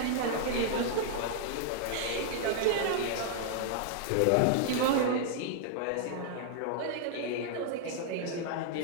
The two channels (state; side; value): different; both; correlation 0.00